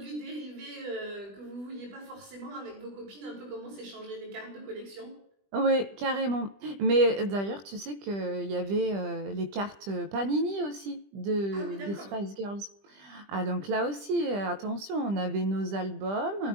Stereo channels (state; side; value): late; left; 20 ms